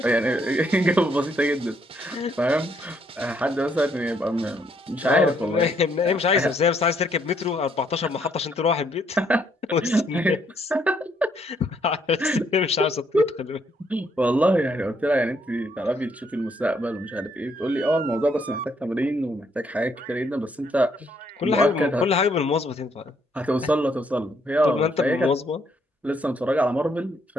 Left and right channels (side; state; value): both; normal; correlation 0.71